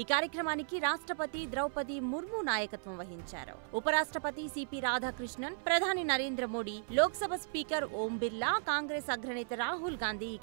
కార్యక్రమానికి రాష్ట్రపతి ద్రౌపది ముర్ము నాయకత్వం వహించారు. ఉపరాష్ట్రపతి సిపి రాధాకృష్ణన్, ప్రధాని నరేంద్ర మోడీ, లోక్సభ స్పీకర్ ఓం బిర్లా, కాంగ్రెస్ అగ్రనేత రాహుల్ గాంధీ ఈ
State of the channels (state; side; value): silent; left; 54 dB below the other